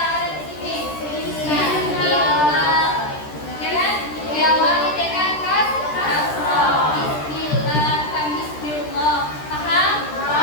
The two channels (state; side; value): late; right; 13 ms